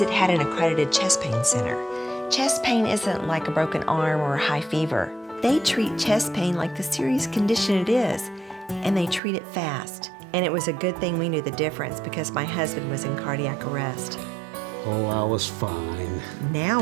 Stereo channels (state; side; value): drops out; left; at 9.2 s